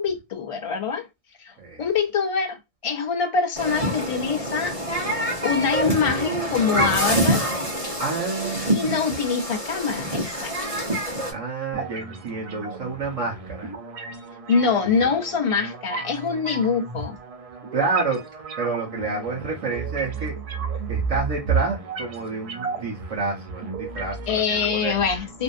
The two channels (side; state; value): left; late; 1.6 ms